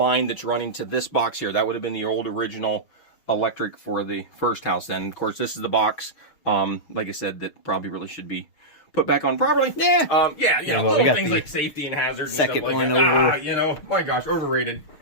that's running to this box here. That would have been the old original electric for the first house. Then, of course, this is the box, like I said, that probably really should be put back on properly. Yeah. Little things like safety and hazards. Second and stuff like one that. over. My gosh, overrated.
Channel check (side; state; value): right; late; 6.6 ms